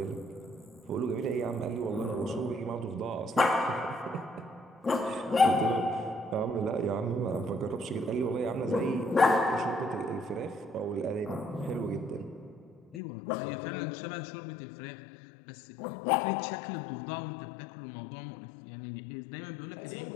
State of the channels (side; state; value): right; drops out; at 13.0 s